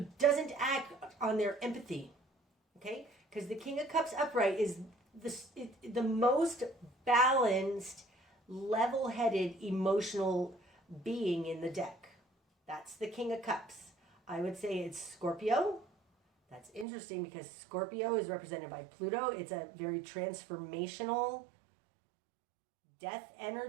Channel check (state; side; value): drops out; left; at 16.9 s